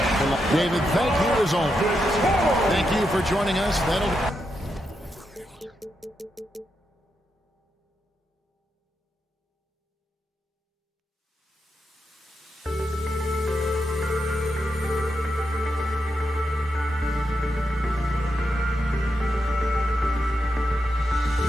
David, thank you as always. Thank you for joining us.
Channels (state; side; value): normal; both; correlation 0.84